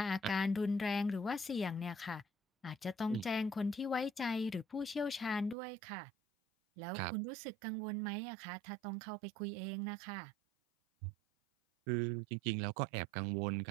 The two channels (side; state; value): left; drops out; at 5.6 s